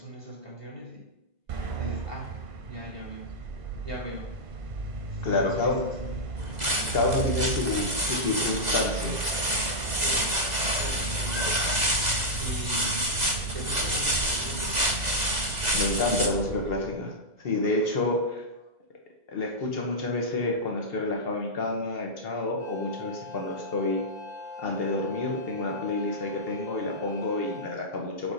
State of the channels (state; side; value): late; left; 2.0 ms